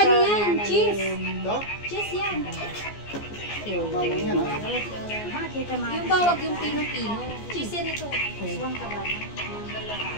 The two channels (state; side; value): late; right; 14 ms